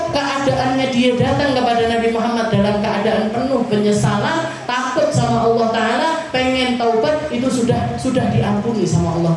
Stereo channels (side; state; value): both; identical; correlation 1.00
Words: keadaannya dia datang kepada Nabi Muhammad dalam keadaan penuh penyesalan, takut sama Allah Taala, pengen taubat, itu sudah diampuni sama